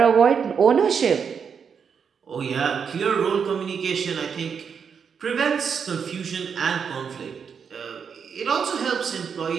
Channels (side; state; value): left; quieter; 6.7 dB